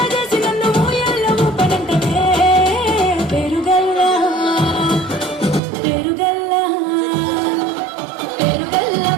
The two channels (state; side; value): drops out; left; at 5.6 s